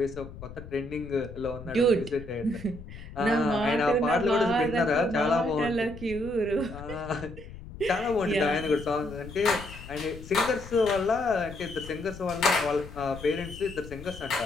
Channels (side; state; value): left; noise; rumble, 14 dB below the sound